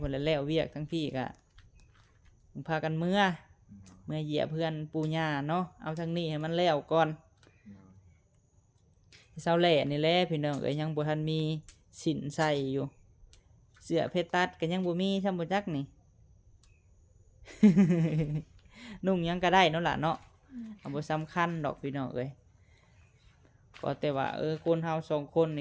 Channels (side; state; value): both; identical; correlation 1.00